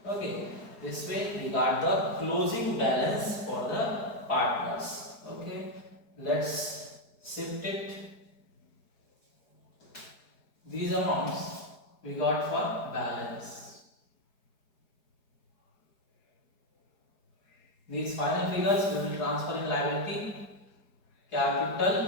Okay, this way we got the closing balance for the partners. Okay, let's shift it. These amounts we got for balance. These final figures we will transfer in liability capital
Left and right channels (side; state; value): right; late; 4.8 ms